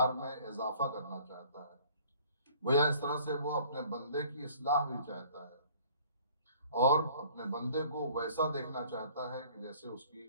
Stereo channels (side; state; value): both; inverted; correlation -0.53